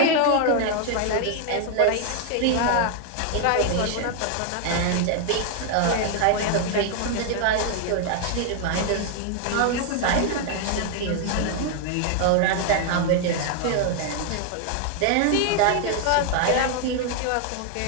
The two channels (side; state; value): both; different; correlation 0.00